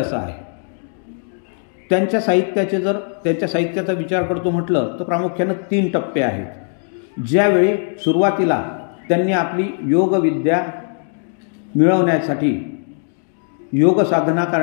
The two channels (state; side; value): silent; right; 58 dB below the other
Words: आहे. त्यांच्या साहित्याचा विचार करतो म्हटलं तर प्रामुख्यानं 3 टप्पे आहेत. ज्यावेळी सुरुवातीला त्यांनी आपली योगविद्या मिळवण्यासाठी योग साधना